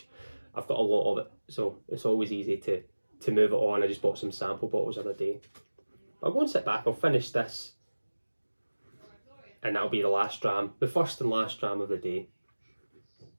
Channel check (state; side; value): inverted; both; correlation -1.00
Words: I've got a lot of it, so it's always easy to move it on. I just bought some sample bottles the other day. I'll go and sit back, I'll finish this, and that'll be the last dram, the first and last dram of the day.